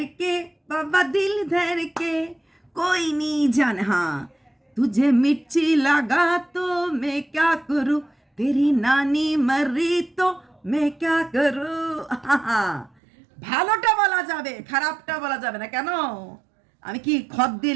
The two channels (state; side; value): drops out; left; at 12.9 s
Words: বাবা দিল ধরকে कोई नहीं जान, हाँ तुझे मिर्ची लगा तो मैं क्या करूँ, तेरी नानी मरी तो मैं क्या करूँ। ভালোটা বলা যাবে, খারাপটা বলা যাবে না কেন? আমি কি খত দিয়ে